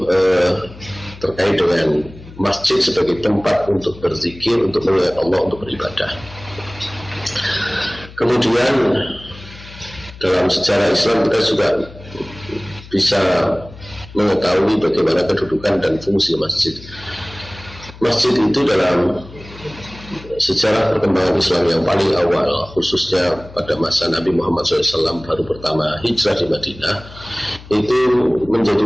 terkait dengan masjid sebagai tempat untuk berzikir, untuk mengingat Allah, untuk beribadah. Kemudian dalam sejarah Islam kita juga bisa mengetahui bagaimana kedudukan dan fungsi masjid. Masjid itu dalam sejarah perkembangan Islam yang paling awal, khususnya pada masa Nabi Muhammad SAW baru pertama hijrah di Madinah, itu menjadi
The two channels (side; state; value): left; noise; hum, 18 dB below the sound